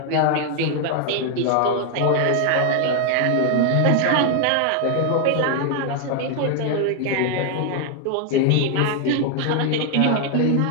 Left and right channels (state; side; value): different; both; correlation 0.00